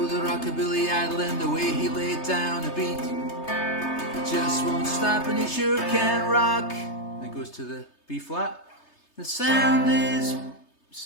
the rockabilly idol and the way he laid down a beat. He just won't stop and he sure can rock. And it goes to the B flat. The sound is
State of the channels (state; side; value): late; right; 3.3 ms